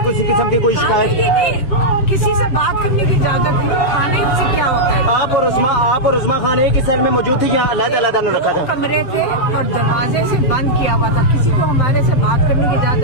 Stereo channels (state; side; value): late; right; 7.7 ms